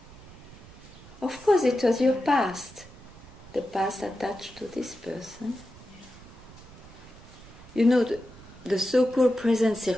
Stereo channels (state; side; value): noise; right; rumble, 19 dB below the sound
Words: Of course, it was your past. The past attached to this person. You know, the so-called present